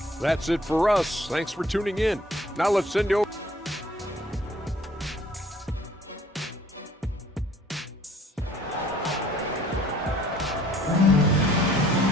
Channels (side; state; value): both; normal; correlation 0.57